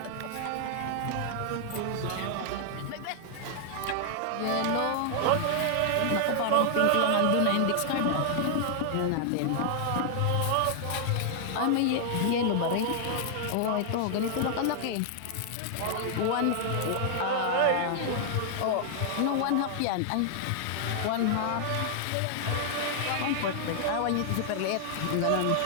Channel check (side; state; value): both; different; correlation -0.01